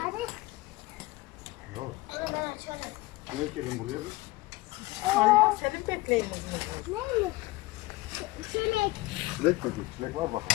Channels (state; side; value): quieter; right; 20.7 dB